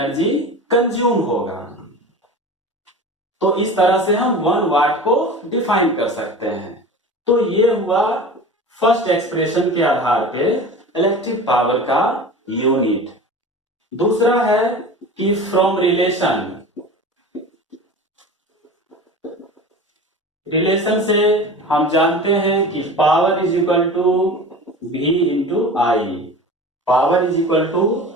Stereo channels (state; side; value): normal; both; correlation 0.35